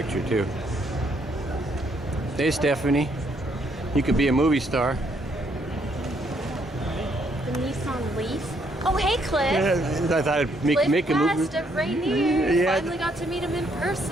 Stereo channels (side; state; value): both; normal; correlation 0.71